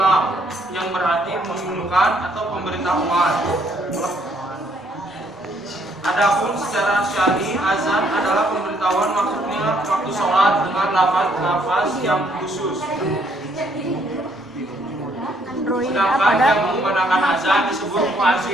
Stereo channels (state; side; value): normal; both; correlation 0.68